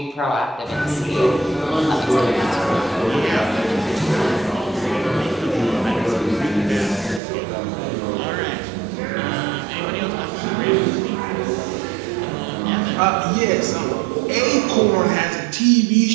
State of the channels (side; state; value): left; drops out; at 7.2 s